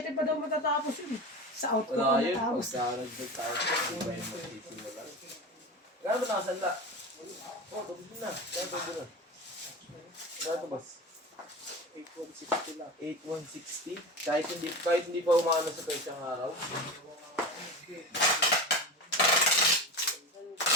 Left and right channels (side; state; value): both; normal; correlation 0.26